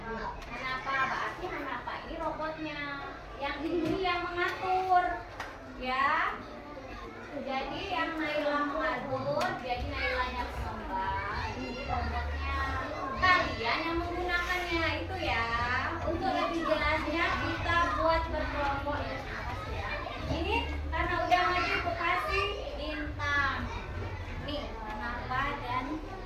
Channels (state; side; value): identical; both; correlation 1.00